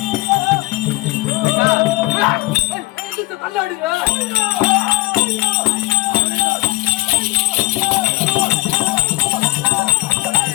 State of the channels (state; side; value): quieter; right; 21.2 dB